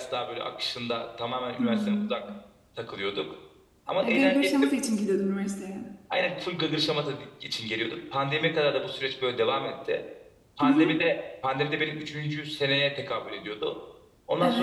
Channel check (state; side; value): identical; both; correlation 1.00